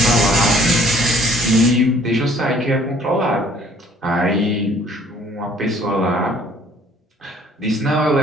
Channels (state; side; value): normal; both; correlation 0.57